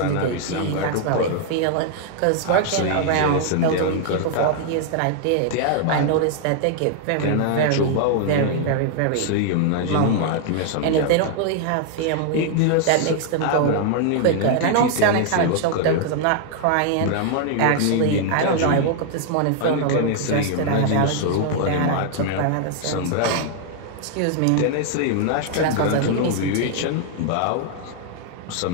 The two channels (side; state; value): both; different; correlation 0.00